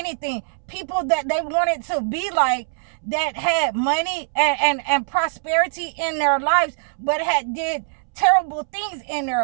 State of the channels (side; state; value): left; silent; 64 dB below the other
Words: People that they wanted to be like, that had money and prosperity in their lives, but had did terrible things in